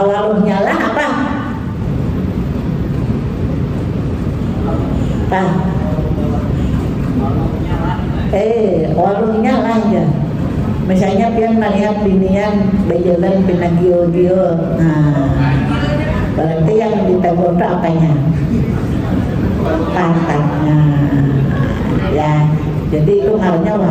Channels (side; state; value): both; identical; correlation 1.00